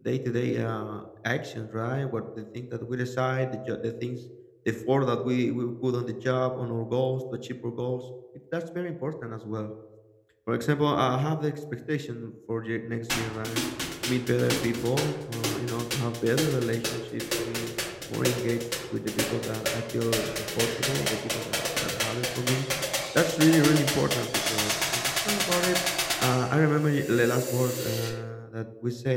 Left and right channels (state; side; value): identical; both; correlation 1.00